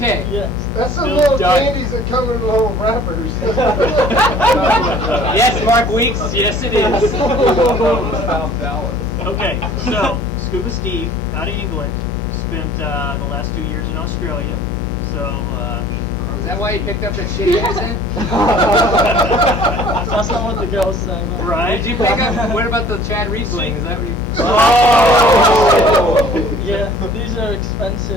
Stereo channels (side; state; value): left; noise; hum, 5 dB below the sound